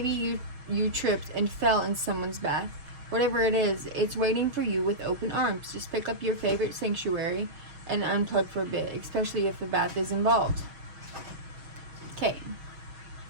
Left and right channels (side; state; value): left; late; 6.3 ms